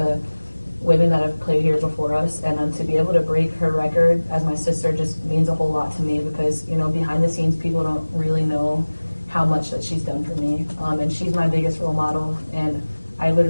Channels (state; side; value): inverted; both; correlation -1.00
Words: women that have played here before us, and to be able to break her record as my sister just means a whole lot to me because, behind the scenes, people don't really know how much that she's done for me. And she's my biggest role model, and I